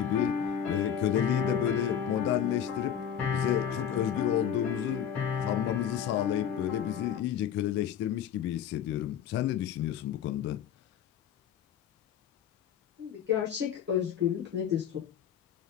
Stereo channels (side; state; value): right; quieter; 9.0 dB